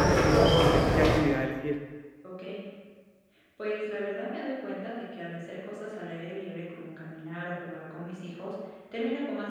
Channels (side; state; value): both; identical; correlation 1.00